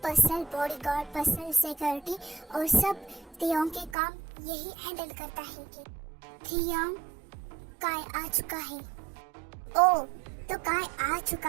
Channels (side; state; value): left; drops out; at 4.0 s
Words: बॉडीगार्ड, पर्सनल सिक्योरिटी और सब तेयोंग के काम यही हैंडल करता है। कि तेयोंग काय आ चुका है। ओ, तो काय आ चुका